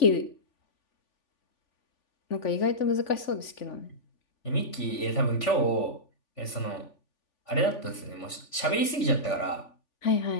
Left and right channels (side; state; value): right; late; 3.5 ms